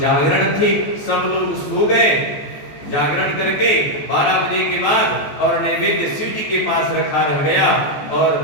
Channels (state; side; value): late; right; 14 ms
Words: थी, सब लोग सो गए, जागरण करके 12 बजे के बाद और नैवेद्य शिव जी के पास रखा रह गया, और